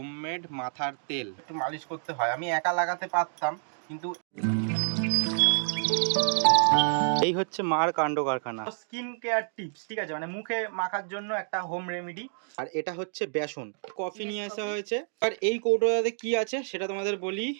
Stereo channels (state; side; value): silent; left; digital silence